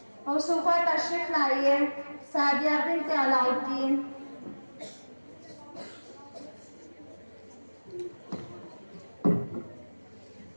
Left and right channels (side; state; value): both; inverted; correlation -1.00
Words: موصوفہ تشریف لائیے سعدیہ بنت علاؤالدین۔